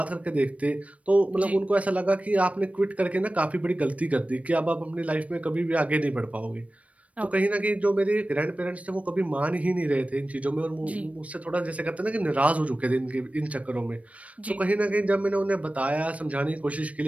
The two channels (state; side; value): late; left; 0.066 ms